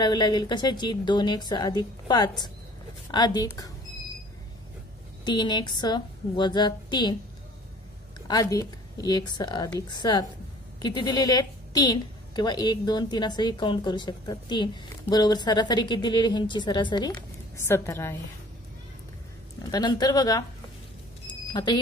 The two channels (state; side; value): normal; both; correlation 0.50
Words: लागेल. कशाची? 2x अधिक 5 अधिक 3x वजा 3 अधिक x अधिक 7 किती दिलेले आहेत? 3 किंवा 1 2 3 असंही काउंट करू शकतात. 3 बरोबर सरासरी किती दिलेली? ह्यांची सरासरी 17 आहे. आता नंतर बघा आता